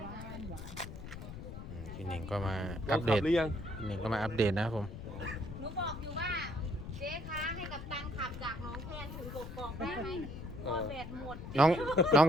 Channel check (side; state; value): left; noise; rumble, 10 dB below the sound